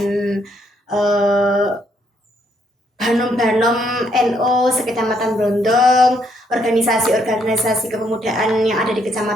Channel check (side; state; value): both; normal; correlation 0.72